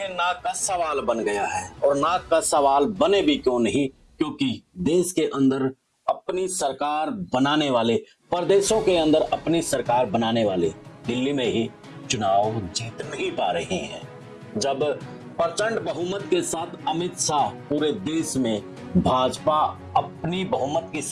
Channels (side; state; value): both; identical; correlation 1.00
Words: नाक का सवाल बन गया है। और नाक का सवाल बने भी क्यों नहीं, क्योंकि देश के अंदर अपनी सरकार बनाने वाले, प्रदेशों के अंदर अपनी सरकार बनाने वाले दिल्ली में ही चुनाव जीत नहीं पा रहे हैं। जब प्रचंड बहुमत के साथ अमित शाह पूरे देश में भाजपा अपनी बहुमत की